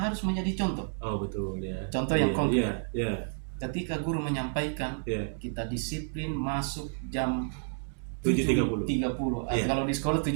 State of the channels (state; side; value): silent; left; digital silence